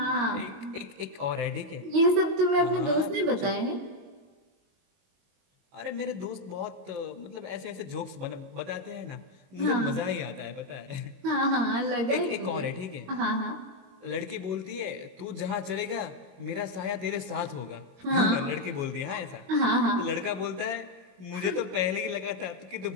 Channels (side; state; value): left; late; 22 ms